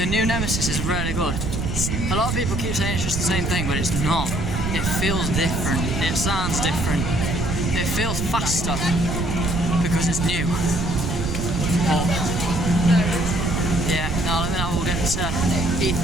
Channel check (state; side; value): noise; right; rumble, 2 dB below the sound